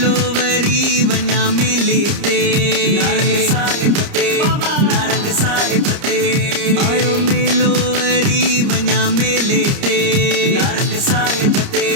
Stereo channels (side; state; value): left; late; 30 ms